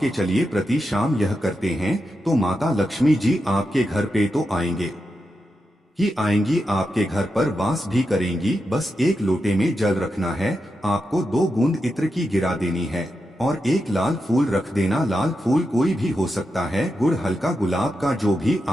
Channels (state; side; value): normal; both; correlation 0.88